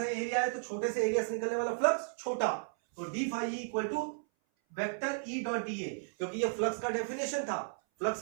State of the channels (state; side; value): silent; left; 55 dB below the other